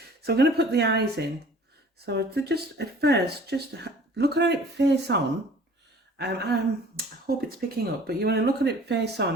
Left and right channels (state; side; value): normal; both; correlation 0.49